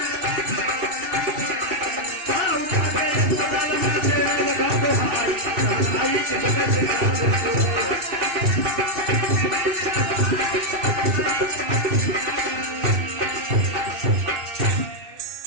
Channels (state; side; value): late; left; 2.6 ms